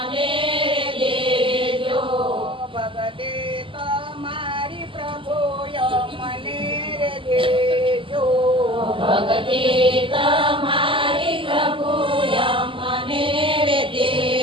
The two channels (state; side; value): late; left; 0.25 ms